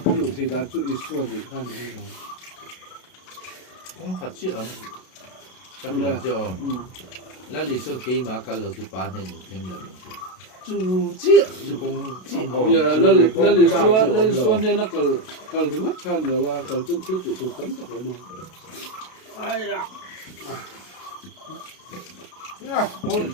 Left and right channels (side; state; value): right; late; 32 ms